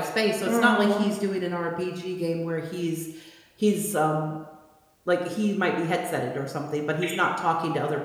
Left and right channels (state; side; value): identical; both; correlation 1.00